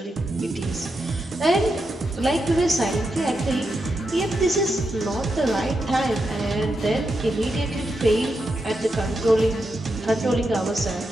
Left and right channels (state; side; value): normal; both; correlation 0.85